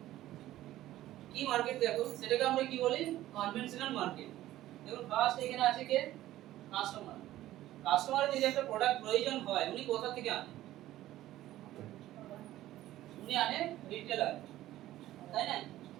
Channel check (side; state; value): left; quieter; 14.6 dB